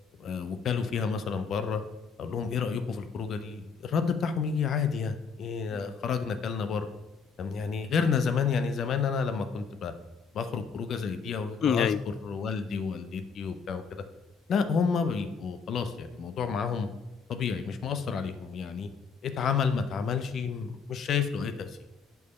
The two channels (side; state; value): right; quieter; 5.7 dB